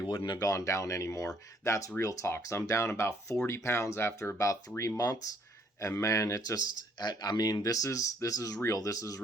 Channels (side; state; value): both; normal; correlation 0.65